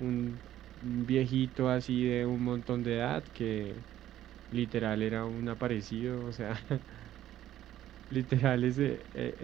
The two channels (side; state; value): left; quieter; 12.6 dB